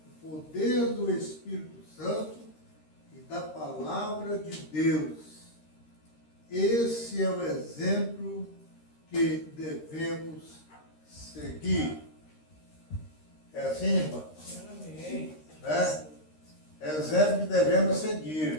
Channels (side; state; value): right; late; 13 ms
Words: o poder do Espírito Santo e da palavra de Deus. Esse é o exemplo que devemos seguir. É assim, irmão? Amém. Né? É o exemplo que devemos